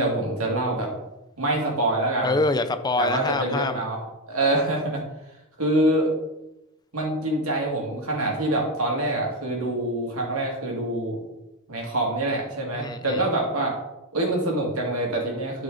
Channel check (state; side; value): normal; both; correlation 0.06